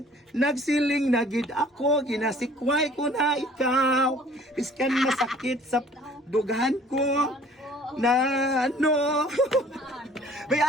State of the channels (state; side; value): normal; both; correlation 0.53